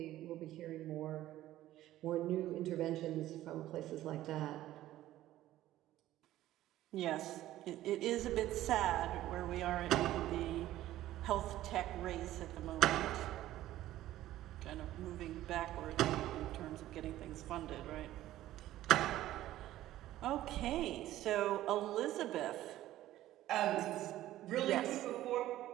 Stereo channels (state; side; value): quieter; left; 14.3 dB